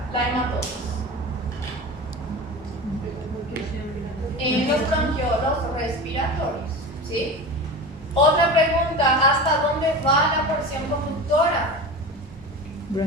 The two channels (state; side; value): normal; both; correlation 0.30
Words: la hematosis, en los bronquiolos respiratorios, ¿sí? Otra pregunta, ¿hasta dónde va la porción conductora?